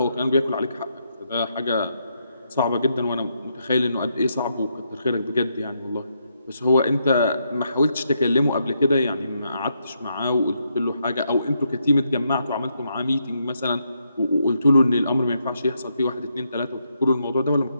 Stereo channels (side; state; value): both; inverted; correlation -0.79